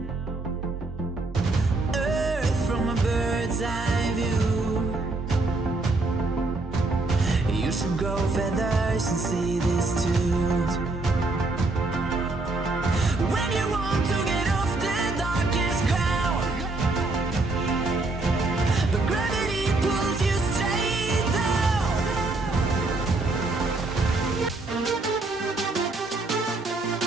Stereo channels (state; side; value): quieter; left; 3.2 dB